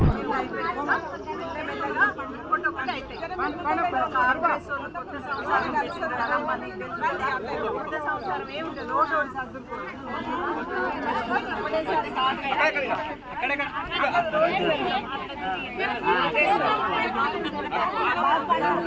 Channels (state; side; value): identical; both; correlation 1.00